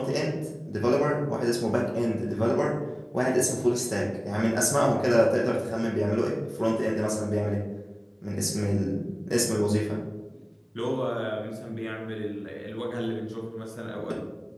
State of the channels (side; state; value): both; identical; correlation 1.00